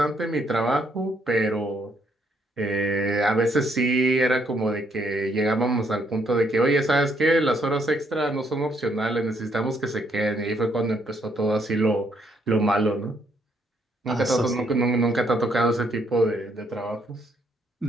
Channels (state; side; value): normal; both; correlation 0.72